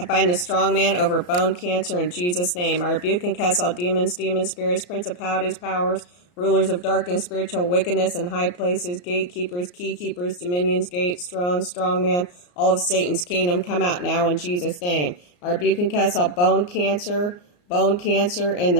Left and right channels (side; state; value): right; late; 34 ms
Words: bind the strong man over bone cancer in Jesus' name. I rebuke and cast all demons, spirits, principalities, powers, rulers of darkness, spiritual wickedness in high places, gatekeepers, keykeepers, dominions, gates, thrones, strong man, all of Satan's kingdom. Come out now in Jesus' name. I rebuke and cast all bone cancer in